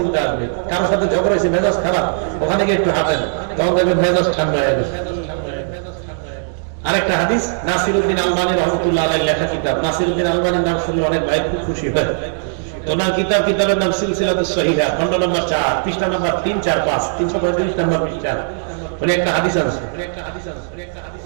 আসবে। কারোর সাথে ঝগড়া হয়েছে, মেজাজ খারাপ, ওখানে গিয়ে একটু হাঁটেন, তখন দেখবেন মেজাজ ঠান্ডা হয়ে গেছে। আরেকটা হাদিস, নাসিরউদ্দিন আলবানী রাহমাতুল্লাহ আলাইহি লেখা কিতাব, নাসিরউদ্দিন আলবানীর নাম শুনলে অনেক ভাই খুব খুশি হয়। ওনার কিতাবের নাম সিলসিলাতুস সহিহা, খণ্ড নম্বর 4, পৃষ্ঠা নম্বর 3, 4, 5, 335 নম্বর পৃষ্ঠা। উনি একটা হাদিস আছে,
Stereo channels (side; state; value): left; silent; digital silence